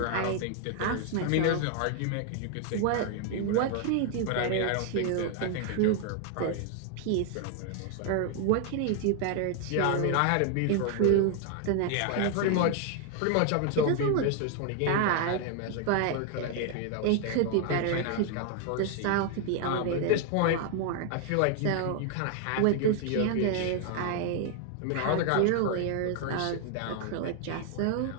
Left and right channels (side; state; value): both; different; correlation 0.00